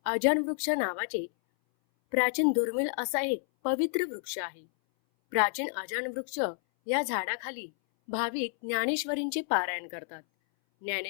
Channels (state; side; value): silent; right; 58 dB below the other